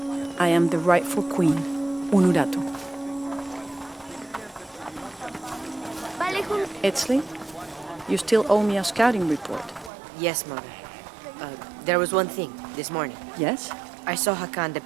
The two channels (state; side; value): drops out; left; at 9.9 s